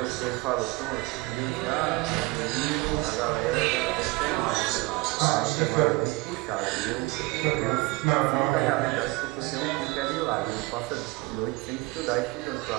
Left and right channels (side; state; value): left; quieter; 23.1 dB